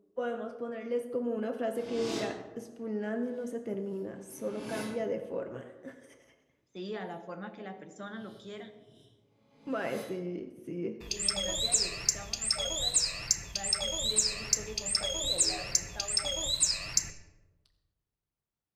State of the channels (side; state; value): both; identical; correlation 1.00